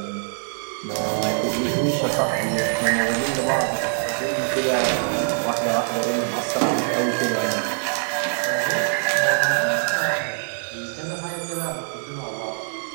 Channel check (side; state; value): left; silent; digital silence